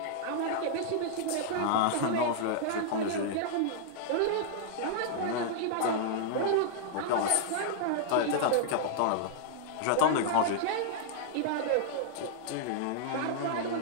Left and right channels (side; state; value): both; different; correlation -0.01